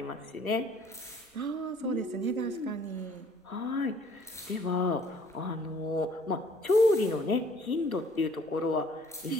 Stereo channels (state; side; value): normal; both; correlation 0.57